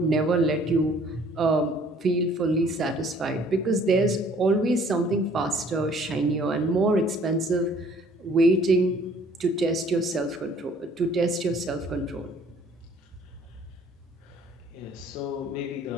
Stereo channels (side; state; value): both; normal; correlation 0.57